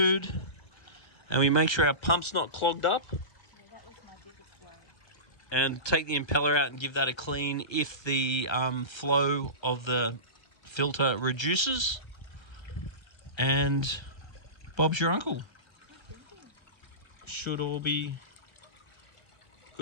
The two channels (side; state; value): right; late; 1.3 ms